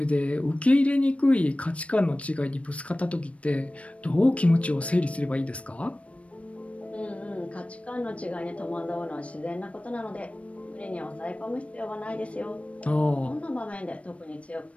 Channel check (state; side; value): late; right; 0.063 ms